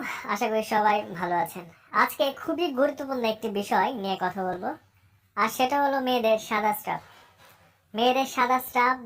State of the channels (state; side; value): identical; both; correlation 1.00